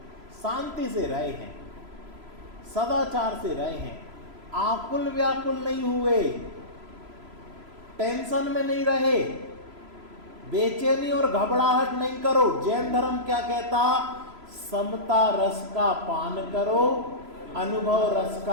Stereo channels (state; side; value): late; left; 3.0 ms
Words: शांति से रहे हैं, सदाचार से रहे हैं, आकुल व्याकुल नहीं हुए, टेंशन में नहीं रहे, बेचैनी और घबराहट नहीं करो। जैन धर्म क्या कहता, समता रस का पान करो, अनुभव रस